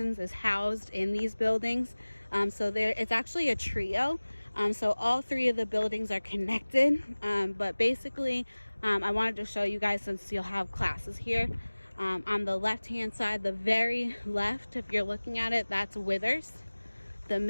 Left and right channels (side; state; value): both; inverted; correlation -1.00